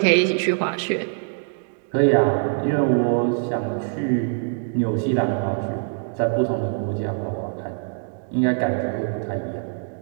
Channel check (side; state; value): left; silent; 63 dB below the other